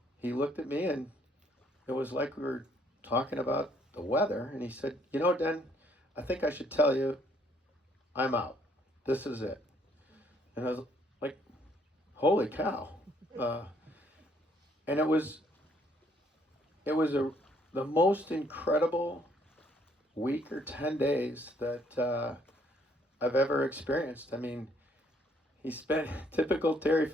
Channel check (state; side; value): normal; both; correlation 0.66